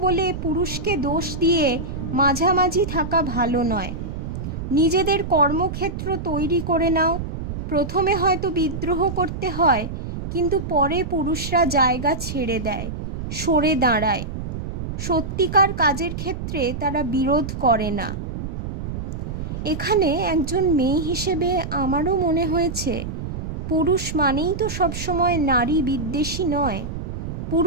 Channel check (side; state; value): right; noise; rumble, 6 dB below the sound